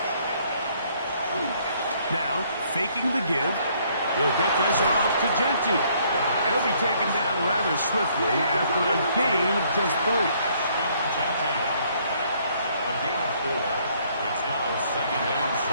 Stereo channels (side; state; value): both; inverted; correlation -0.65